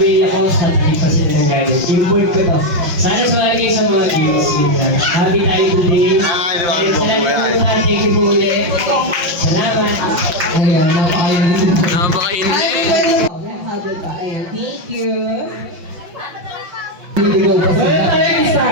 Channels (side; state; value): left; late; 5.8 ms